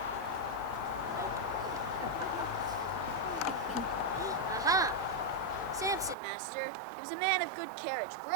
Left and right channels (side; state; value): left; drops out; at 6.2 s